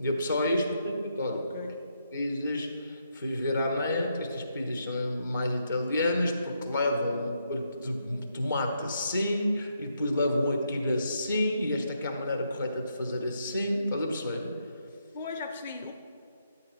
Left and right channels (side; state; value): both; inverted; correlation -0.78